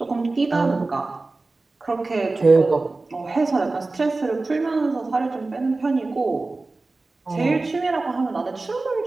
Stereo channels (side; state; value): left; quieter; 3.4 dB